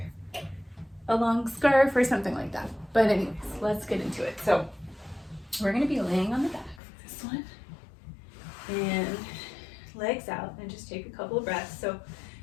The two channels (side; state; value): right; drops out; at 6.8 s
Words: a long scarf or something like that. But anyways, let's get into it. So we're going to be laying on the back for this one and legs out, and just take a couple of breaths. So